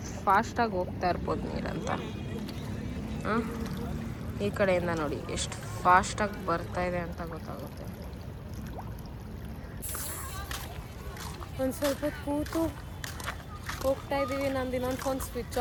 ಫಾಸ್ಟಾಗಿ ಹೋಗ್ತಾ ಇರ್ಬೋದು ನೀರಂತ. ಈ ಕಡೆಯಿಂದ ನೋಡಿ ಎಷ್ಟು ಫಾಸ್ಟಾಗಿ ಬರ್ತಾ ಇದೆ ಅಂತ ಗೊತ್ತಾಗುತ್ತೆ. ಒಂದು ಸ್ವಲ್ಪ ಕೂತು ಹೋಗ್ತಾ ಇದ್ದೀವಿ. ನಂದು ಇನ್ನೊಂದು ಫೋನ್ ಸ್ವಿಚ್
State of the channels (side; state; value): both; identical; correlation 1.00